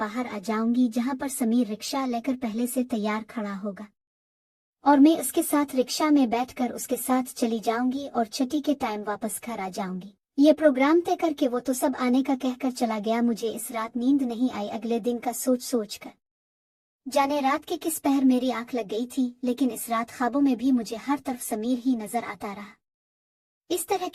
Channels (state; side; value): identical; both; correlation 1.00